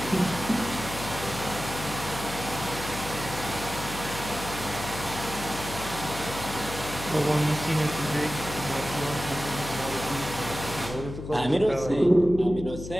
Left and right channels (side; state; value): left; noise; hum, 9 dB below the sound